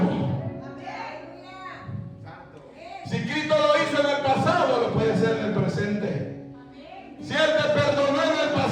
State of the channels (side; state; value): both; identical; correlation 1.00